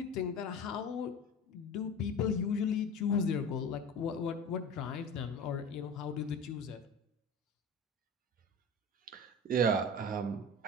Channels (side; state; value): both; normal; correlation 0.33